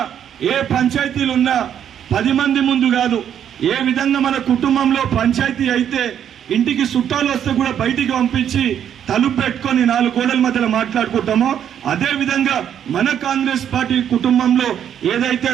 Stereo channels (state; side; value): quieter; left; 9.4 dB